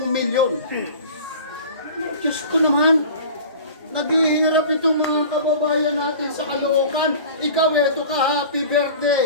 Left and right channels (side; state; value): both; inverted; correlation -0.40